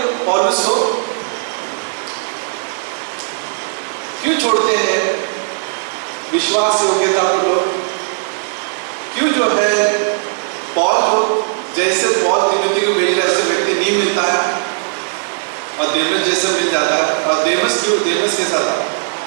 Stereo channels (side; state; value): left; silent; digital silence